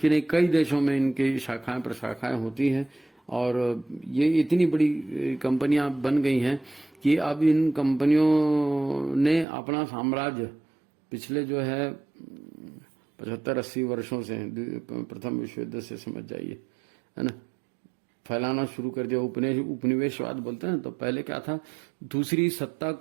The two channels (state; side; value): drops out; left; at 9.5 s